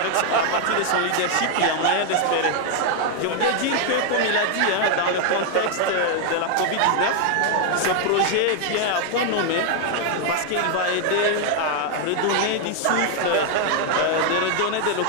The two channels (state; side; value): different; both; correlation 0.00